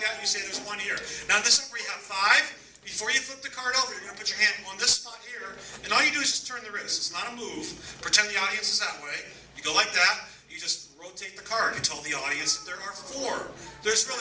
that, and you say there's one here. Now in this one where you have 5, before you flip the card over, you're going to put your hand on this spot here, and all you do is just turn the wrist. It's not a move. Pretend the audience is that way. You go like that. You just rotate the card. You tell the audience that there are 4. There's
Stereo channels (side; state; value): both; identical; correlation 1.00